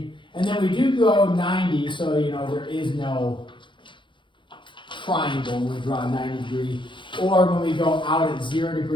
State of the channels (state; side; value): late; right; 0.23 ms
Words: And then we do go 90, so you know there is no triangle when we draw a 90 degree. Or when we go out at 0